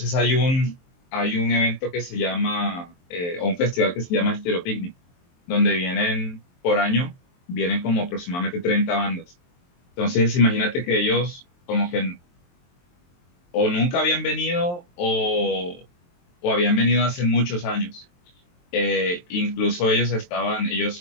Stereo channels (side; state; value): right; late; 23 ms